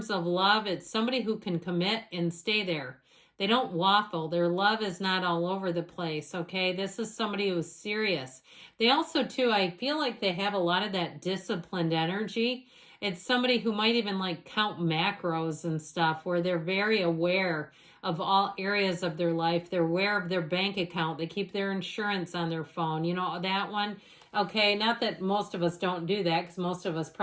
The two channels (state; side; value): identical; both; correlation 1.00